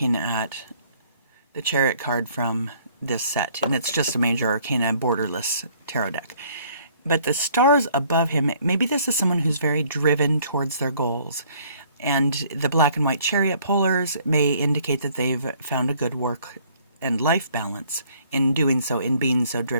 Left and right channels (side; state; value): both; inverted; correlation -0.60